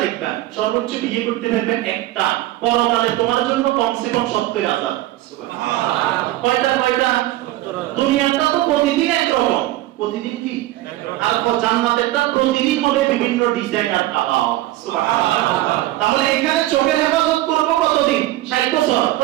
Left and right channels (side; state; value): left; quieter; 16.1 dB